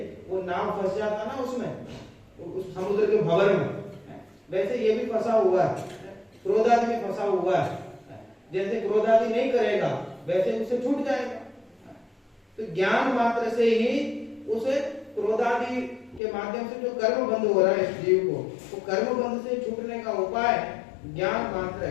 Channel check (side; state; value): right; drops out; at 16.2 s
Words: वो नाव फंस जाता ना उसमें, उस समुद्र के भंवर में, वैसे ये भी फंसा हुआ है, क्रोध आदि में फंसा हुआ है। जैसे क्रोध आदि नहीं करेगा, वैसे उसे छूट जाएगा। तो ज्ञान मात्र से ही उसे क्रोध आदि के माध्यम से जो कर्म बंद हो रहा है इस जीव को, वो कर्म बंद से छूटने का उपाय ज्ञान मात्र